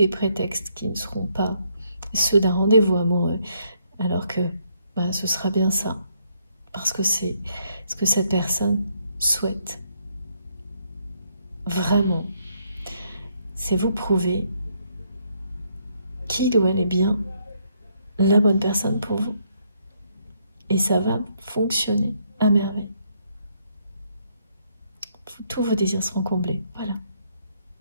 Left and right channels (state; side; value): inverted; both; correlation -0.73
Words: prétextes qui ne seront pas ceux d'un rendez-vous amoureux, alors que ce sera bien ça, parce que c'est ce que cette personne souhaite. Vraiment, c'est vous prouver qu'il ou elle est bien la bonne personne pour vous. Et ça va fonctionner à merveille. Tous vos désirs seront comblés. Voilà.